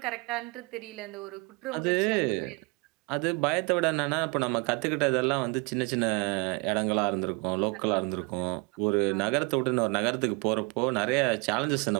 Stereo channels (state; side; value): quieter; left; 30.0 dB